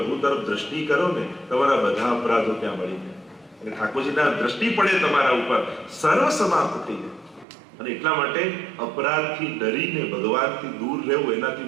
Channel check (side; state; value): left; drops out; at 7.5 s